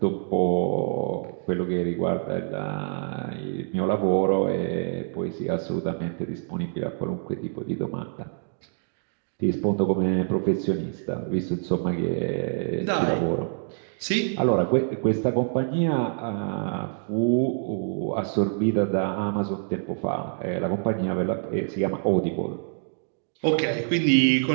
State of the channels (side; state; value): left; silent; digital silence